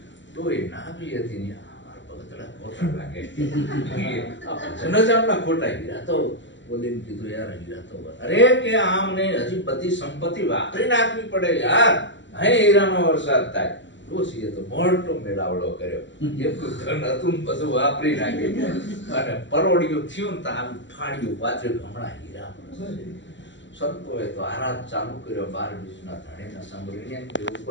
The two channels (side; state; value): right; late; 0.54 ms